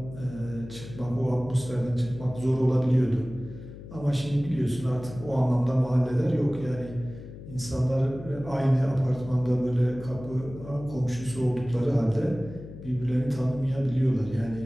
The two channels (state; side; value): noise; left; hum, 14 dB below the sound